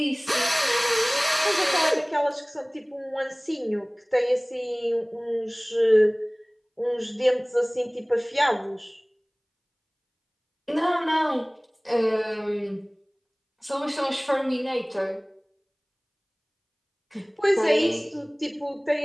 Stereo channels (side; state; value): both; identical; correlation 1.00